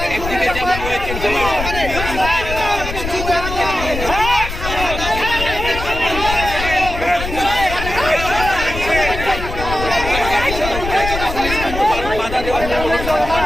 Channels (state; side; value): noise; left; rumble, 7 dB below the sound